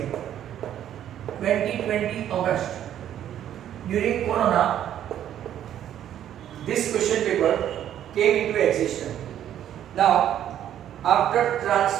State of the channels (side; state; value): left; quieter; 10.8 dB